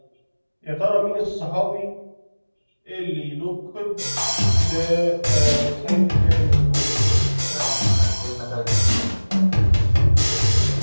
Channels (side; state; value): both; inverted; correlation -1.00